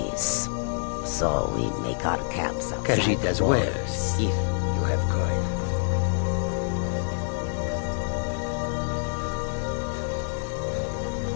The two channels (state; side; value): silent; right; digital silence